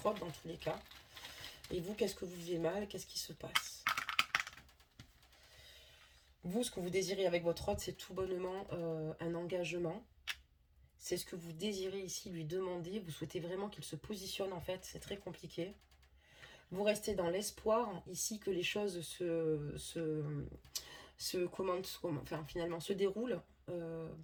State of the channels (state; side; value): identical; both; correlation 1.00